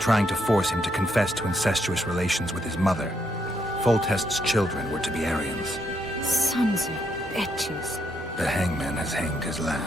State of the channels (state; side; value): normal; both; correlation 0.76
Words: trying to force him to confess to incestuous relations with his mother. Foltest's children were to be Arians. Sons of bitches. The hangman has hanged his